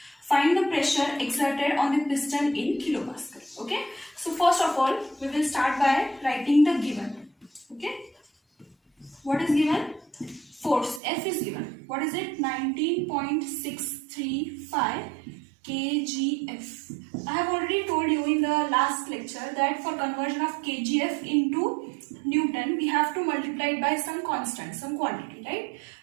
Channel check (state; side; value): drops out; left; at 11.0 s